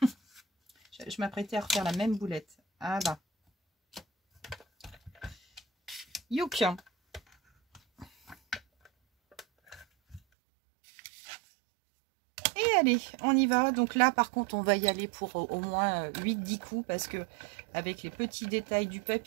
Je m'apprêtais à refaire la même boulette. Ah là. Youk. Et allez, on y va. Donc là, par contre, on va y aller pour au moins 8-10 coups parce que avec les petits détails du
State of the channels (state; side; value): drops out; left; at 10.2 s